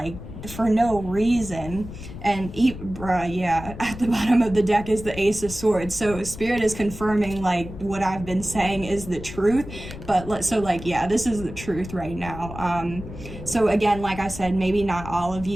for no reason. And yeah, at the bottom of the deck is the Ace of Swords. So Spirit is confirming like what I've been saying is the truth. But so like, yeah, this is the truth right now. So again, like I said, maybe not all of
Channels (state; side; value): noise; left; rumble, 12 dB below the sound